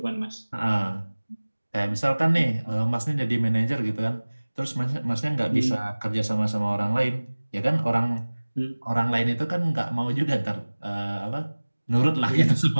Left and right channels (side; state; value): both; inverted; correlation -1.00